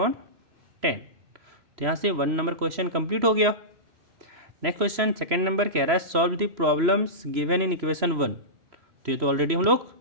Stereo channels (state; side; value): late; left; 3.0 ms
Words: तो यहाँ से 1 नंबर क्वेश्चन कंप्लीट हो गया। नेक्स्ट क्वेश्चन 2nd नंबर कह रहा है solve the problems given in equation 1। तो ये तो ऑलरेडी हम लोग